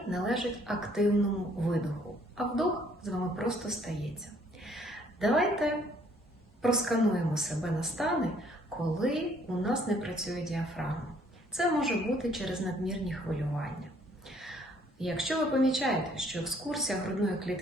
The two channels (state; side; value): normal; both; correlation 0.63